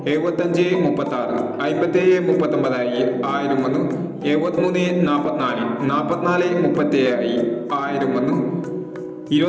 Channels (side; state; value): both; identical; correlation 1.00